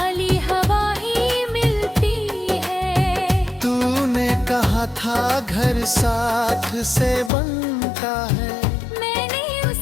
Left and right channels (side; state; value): right; drops out; at 7.3 s